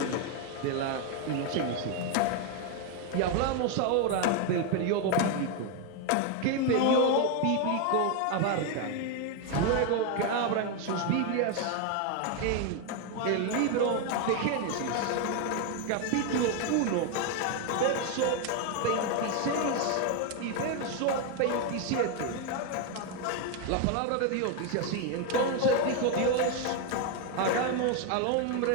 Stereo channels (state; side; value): different; both; correlation 0.01